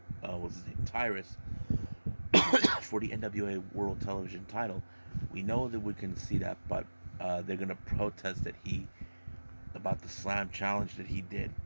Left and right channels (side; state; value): both; inverted; correlation -1.00